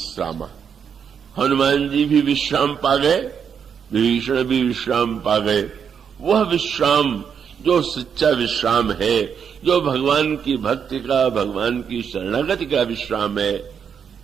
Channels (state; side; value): quieter; left; 7.3 dB